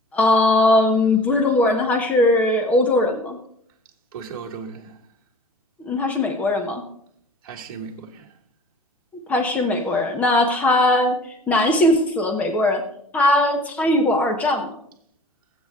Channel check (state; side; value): normal; both; correlation 0.46